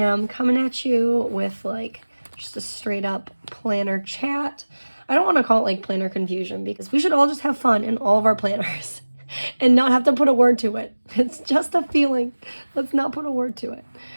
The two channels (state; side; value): inverted; both; correlation -1.00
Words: coming at you with like just a straight up planner chat. I don't want to call it like planner confusion because we should all just have fun in all of our planners and not have to put a word to it. It's just a feeling. Let's not put a word to it.